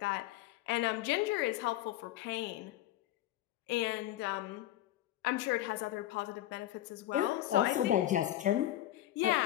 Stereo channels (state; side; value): quieter; right; 14.0 dB